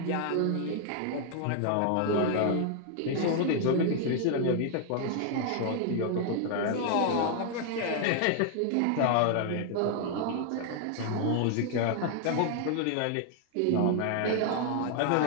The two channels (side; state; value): both; different; correlation 0.00